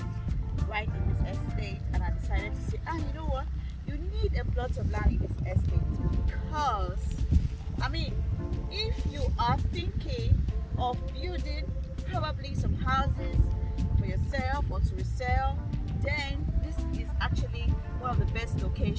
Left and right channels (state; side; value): identical; both; correlation 1.00